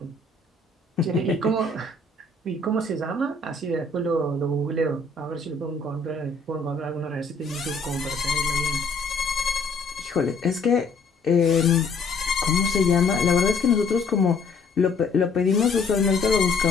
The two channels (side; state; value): right; quieter; 3.7 dB